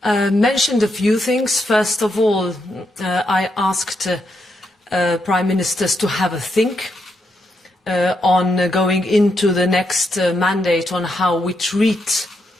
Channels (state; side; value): normal; both; correlation 0.81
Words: mentioned a few things. First of all, I asked Prime Ministers to have a think on going into the next mandate on how we treat